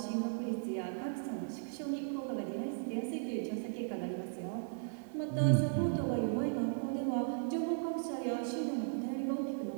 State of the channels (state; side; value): silent; left; digital silence